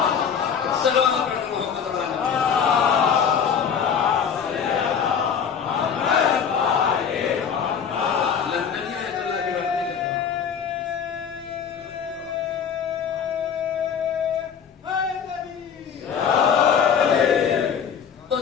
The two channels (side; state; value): right; quieter; 7.3 dB